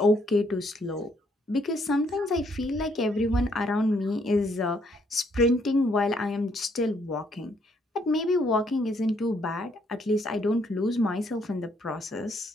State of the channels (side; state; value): both; normal; correlation 0.70